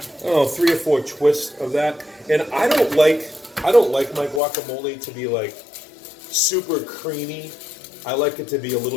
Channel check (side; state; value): right; drops out; at 4.4 s